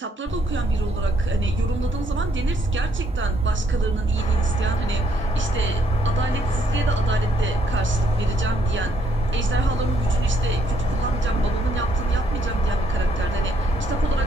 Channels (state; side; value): normal; both; correlation 0.70